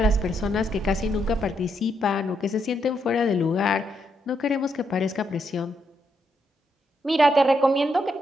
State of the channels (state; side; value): normal; both; correlation 0.78